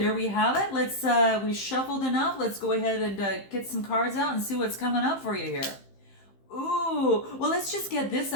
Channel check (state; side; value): late; right; 15 ms